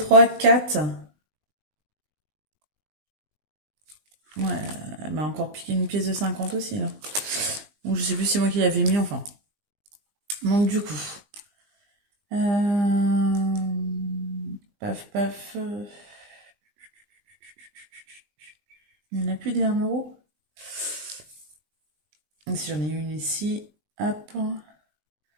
4. Ouais, elle m'a encore piqué une pièce de 50 aussi, là. Donc, je sais plus si c'est moi qui l'avais mis, enfin. Donc, du coup. Paf, paf. Il n'y en a plus des 1 euro. Donc, si j'en ai une ici, hop.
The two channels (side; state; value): left; late; 19 ms